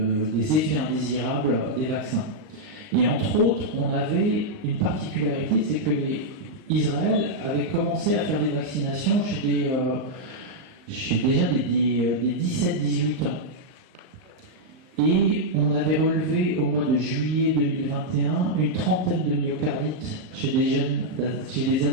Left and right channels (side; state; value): left; late; 38 ms